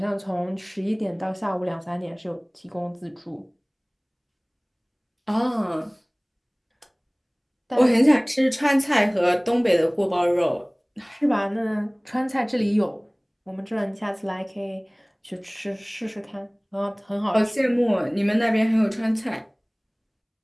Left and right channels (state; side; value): identical; both; correlation 1.00